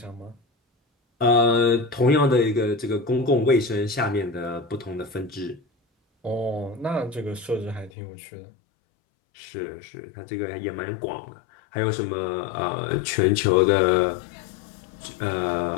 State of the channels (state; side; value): drops out; right; at 7.9 s